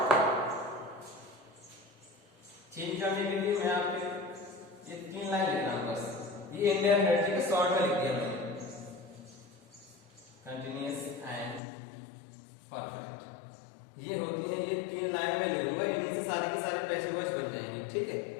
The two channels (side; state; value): right; drops out; at 11.6 s